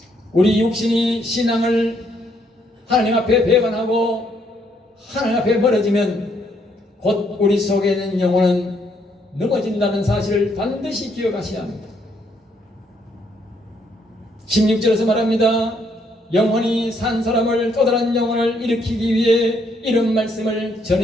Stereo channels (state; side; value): normal; both; correlation 0.71